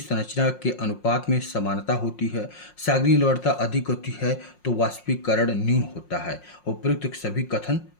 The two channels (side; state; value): right; late; 5.5 ms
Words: के अनुपात में समानता होती है। सागरीय लवणता अधिक होती है तो वाष्पीकरण न्यून होता है। उपयुक्त सभी कथन